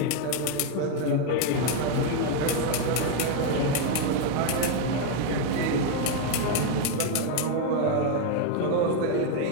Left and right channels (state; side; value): different; both; correlation 0.01